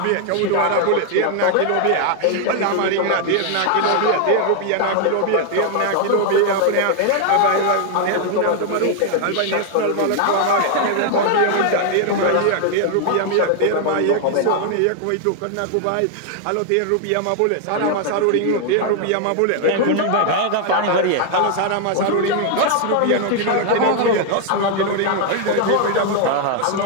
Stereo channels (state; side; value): different; both; correlation 0.00